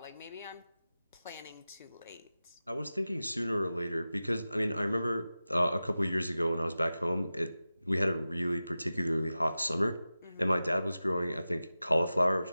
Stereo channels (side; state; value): both; inverted; correlation -0.95